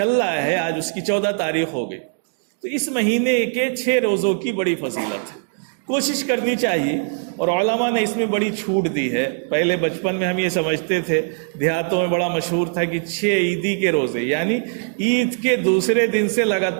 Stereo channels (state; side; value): silent; left; digital silence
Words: رہا ہے، آج اس کی 14 تاریخ ہو گئی، تو اس مہینے کے 6 روزوں کی بڑی فضیلت ہے، کوشش کرنی چاہیے۔ اور علماء نے اس میں بڑی چھوٹ دی ہے۔ پہلے بچپن میں ہم یہ سمجھتے تھے، دیہاتوں میں بڑا مشہور تھا کہ 6 عیدی کے روزے، یعنی عید کے دوسرے دن سے